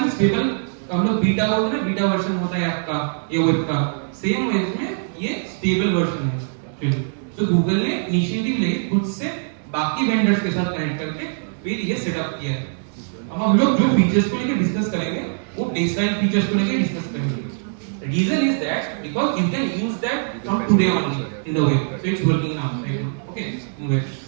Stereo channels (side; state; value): left; silent; digital silence